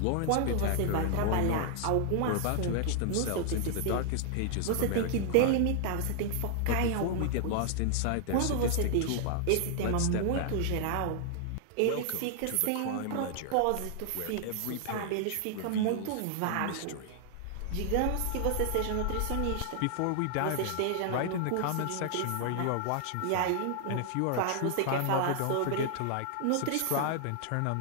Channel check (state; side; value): different; both; correlation 0.00